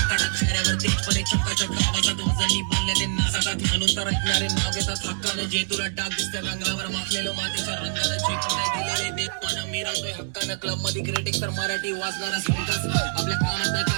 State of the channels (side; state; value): left; silent; 62 dB below the other